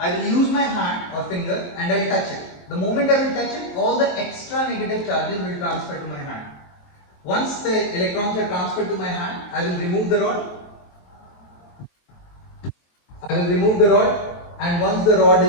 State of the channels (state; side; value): late; right; 23 ms